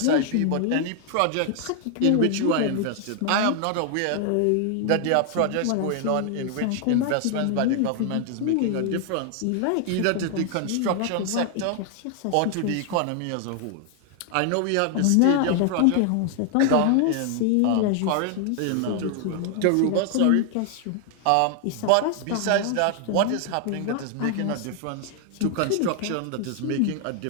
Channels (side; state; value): both; different; correlation 0.00